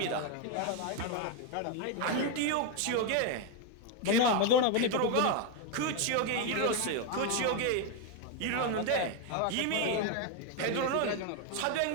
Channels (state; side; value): different; both; correlation 0.01